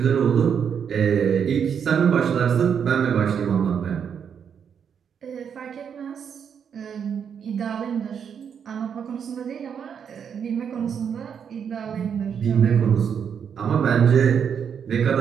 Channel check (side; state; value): left; quieter; 7.5 dB